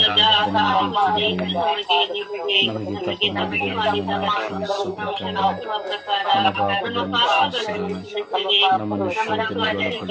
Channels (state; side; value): identical; both; correlation 1.00